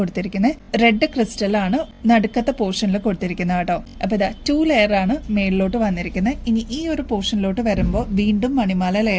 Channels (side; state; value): both; identical; correlation 1.00